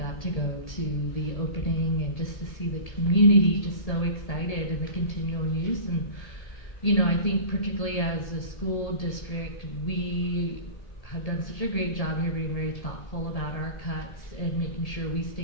to go to the opening and just to see the community just so excited and the continual use. And, I think particularly as a school district, we have done such a great job here being very thoughtful about our cuts and making sure we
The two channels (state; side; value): late; right; 1.8 ms